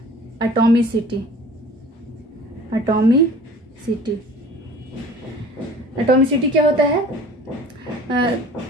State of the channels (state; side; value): normal; both; correlation 0.46